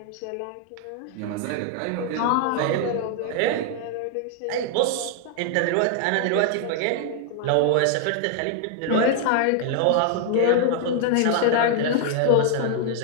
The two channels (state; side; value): different; both; correlation 0.00